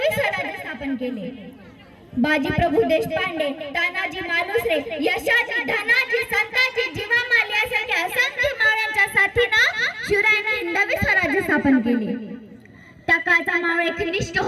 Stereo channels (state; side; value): identical; both; correlation 1.00